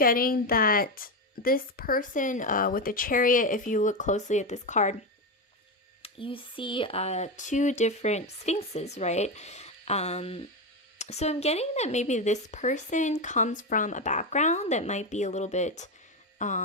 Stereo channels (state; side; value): normal; both; correlation 0.13